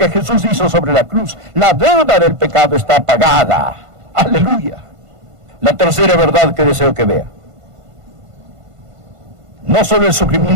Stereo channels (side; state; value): left; late; 1.5 ms